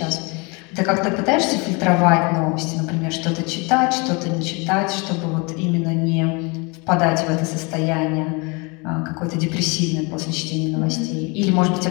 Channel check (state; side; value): quieter; right; 29.5 dB